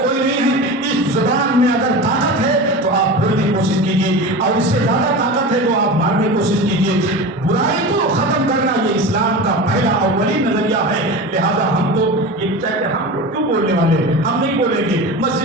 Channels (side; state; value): both; normal; correlation 0.29